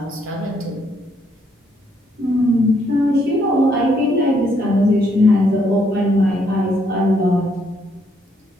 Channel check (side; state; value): both; normal; correlation 0.72